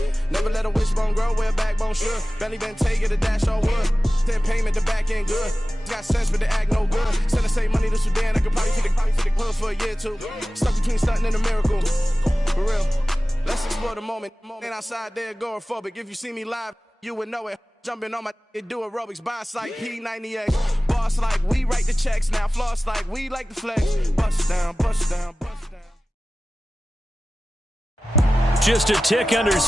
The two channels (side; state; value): both; normal; correlation 0.96